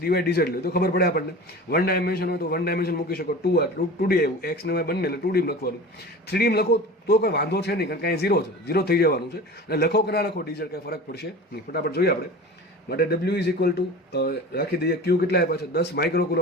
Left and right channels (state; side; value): normal; both; correlation 0.35